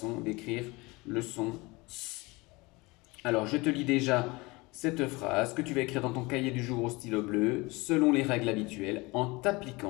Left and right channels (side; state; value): right; quieter; 24.1 dB